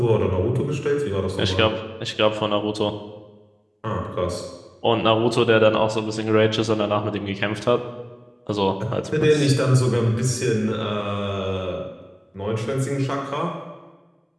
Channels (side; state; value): both; identical; correlation 1.00